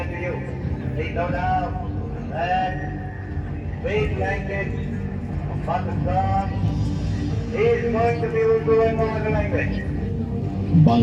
to you. Please no doubt that big language of Pakistan is going to be Urdu and no other language.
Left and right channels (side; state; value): both; identical; correlation 1.00